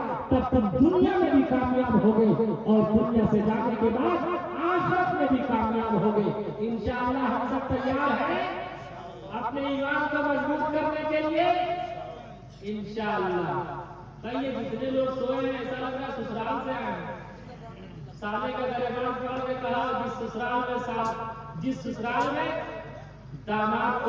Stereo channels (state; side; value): identical; both; correlation 1.00